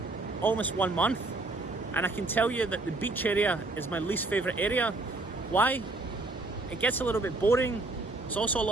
almost 1 month, and I can tell you that the beach area is my least favourite area. Why? It gets a little bit boring. There's also a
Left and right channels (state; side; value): quieter; left; 3.1 dB